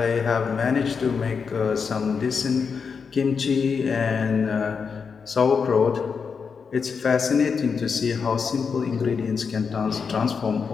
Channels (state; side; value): quieter; right; 5.8 dB